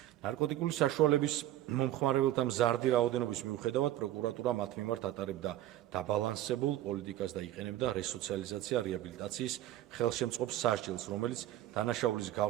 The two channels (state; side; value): quieter; left; 13.6 dB